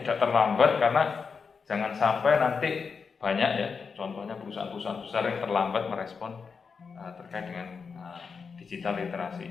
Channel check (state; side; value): quieter; right; 5.5 dB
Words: tidak terlambat, karena jangan sampai nanti banyak ya, contohnya perusahaan-perusahaan besar yang terlambat merespon terkait dengan digital literasi